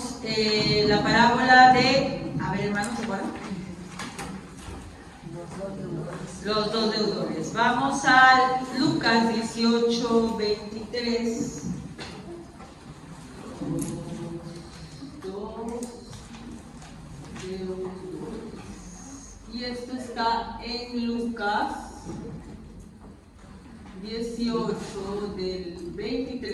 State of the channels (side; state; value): both; identical; correlation 1.00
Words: la parábola de... A ver, hermanos, ¿se acuerdan? Los dos deudores. Vamos a Lucas 18, 23. Y esto está en Lucas 18, del